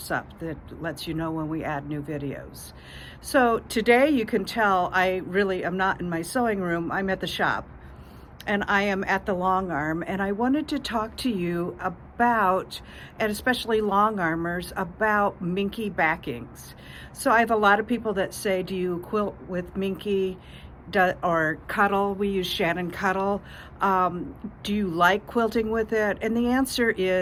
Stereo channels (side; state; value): both; identical; correlation 1.00